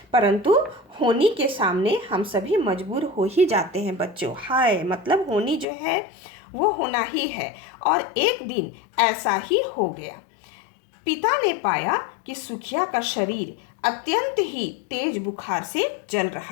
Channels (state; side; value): drops out; right; at 5.7 s